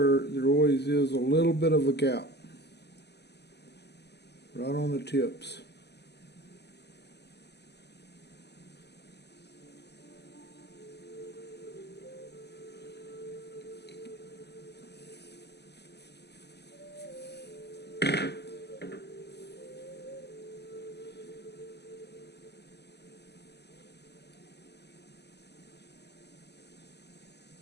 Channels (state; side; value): late; right; 0.49 ms